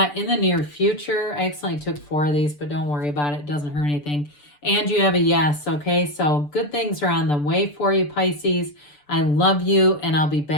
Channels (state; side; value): late; right; 6.8 ms